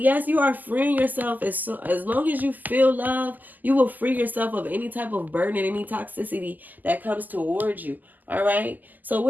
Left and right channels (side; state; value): left; late; 0.084 ms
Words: you are freeing yourself. As long as you feel love, you will free yourself of any type of burden and any toxicity that comes towards you. All right? So